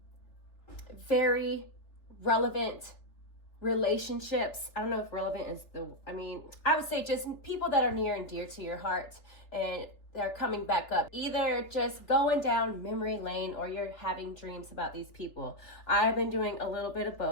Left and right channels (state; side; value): late; right; 3.5 ms